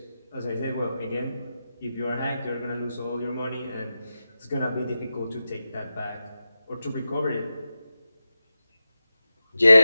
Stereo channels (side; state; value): both; inverted; correlation -0.92